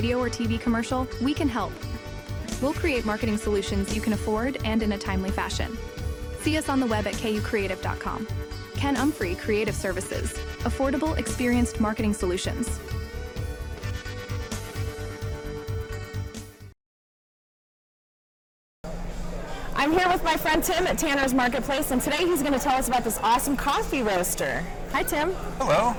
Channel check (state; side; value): identical; both; correlation 1.00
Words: or TV commercial, we can help. We'll create marketing solutions you can afford and in a timely fashion. See us on the web at kucreative.com. Ken Umphrey Creative Services. Affordable, experienced marketing solutions. I'm here with my friend Tim at Tanner's Marketplace, and today he's going to tell us about this awesome coffee roaster. Hi, Tim. Hello.